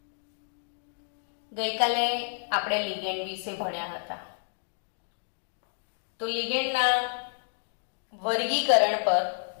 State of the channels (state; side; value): silent; right; digital silence